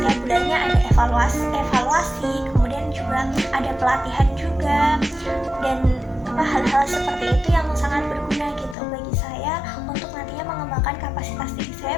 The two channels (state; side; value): drops out; right; at 8.8 s